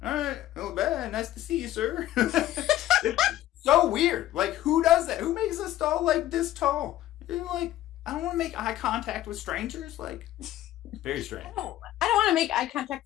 all right, well, bad. Nice to see you, sir. It's so weird. Like, who does that? Who makes a stall like this tall? You're like, I don't want to make eye contact with strangers. Like, very strange. I don't want to make eye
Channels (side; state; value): right; quieter; 13.9 dB